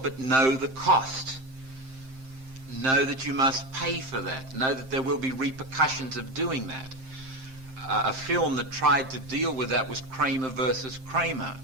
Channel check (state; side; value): late; left; 7.6 ms